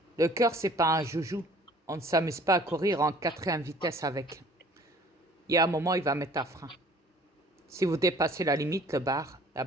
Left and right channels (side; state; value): both; normal; correlation 0.53